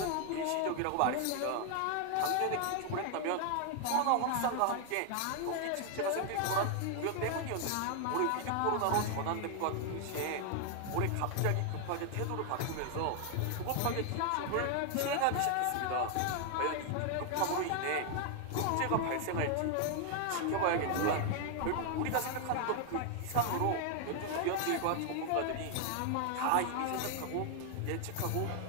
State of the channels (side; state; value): both; different; correlation 0.00